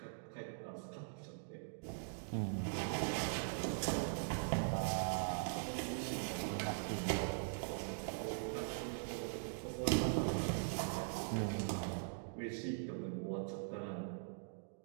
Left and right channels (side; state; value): left; silent; digital silence